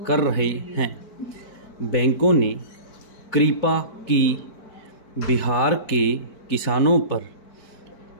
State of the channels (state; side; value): late; right; 4.5 ms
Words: कर रहे हैं। बैंकों ने कृपा की बिहार के किसानों पर